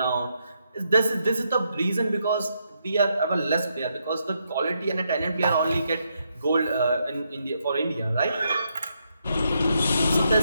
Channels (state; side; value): inverted; both; correlation -0.79